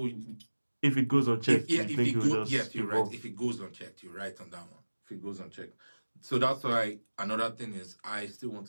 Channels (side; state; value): both; inverted; correlation -1.00